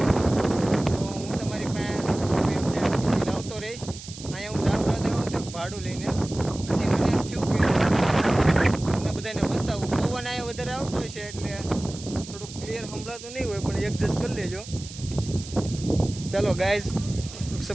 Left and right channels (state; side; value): noise; right; hiss, 14 dB below the sound